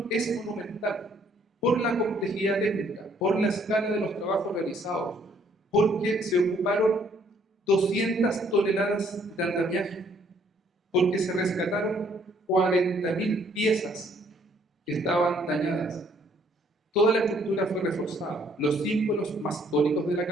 es monumental por la complejidad técnica, por la escala de los trabajos realizados, porque se ocuparon 200 toneladas de andamiaje, porque se rescataron 40.000 piezas que estaban dañadas. Toda la estructura fue reforzada. Los símbolos mastónicos de la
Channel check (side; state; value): both; normal; correlation 0.64